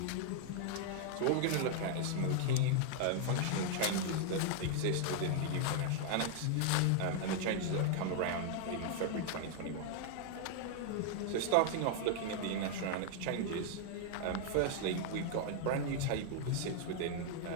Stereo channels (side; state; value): both; different; correlation 0.00